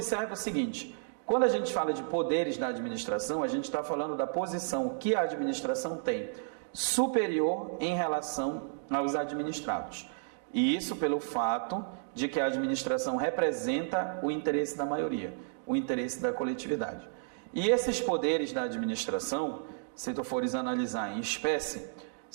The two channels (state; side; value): silent; left; digital silence